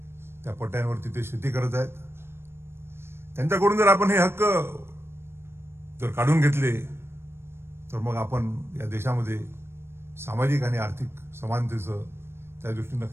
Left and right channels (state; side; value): late; left; 0.12 ms